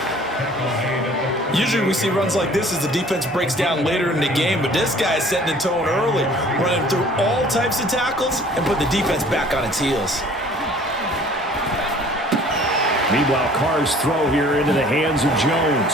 Usually we see runs like this as the defense breaks down later in the game, but this guy is setting the tone early, running through all types of tackles and put the defense back on its heels. Meanwhile, Carr's throw here into the hands of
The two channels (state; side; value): normal; both; correlation 0.52